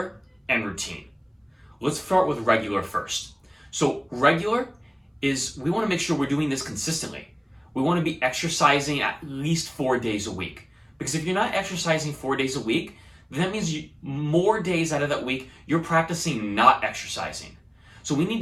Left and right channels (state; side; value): identical; both; correlation 1.00